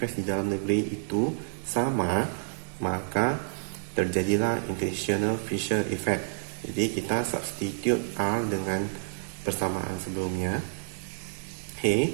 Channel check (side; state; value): left; silent; digital silence